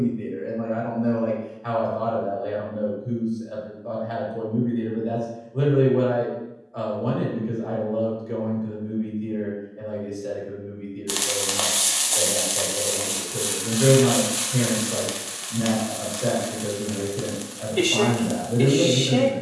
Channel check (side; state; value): both; identical; correlation 1.00